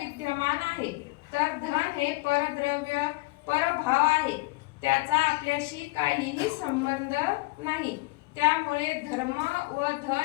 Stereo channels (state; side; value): quieter; right; 23.4 dB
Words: आहे. तर धन हे परद्रव्य परभाव आहे, त्याचा आपल्याशी काहीही संबंध नाही. त्यामुळे धर्म व